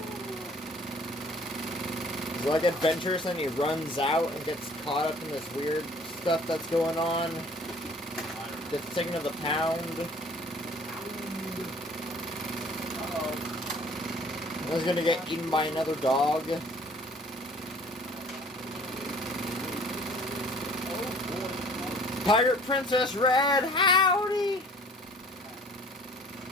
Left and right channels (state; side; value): normal; both; correlation 0.52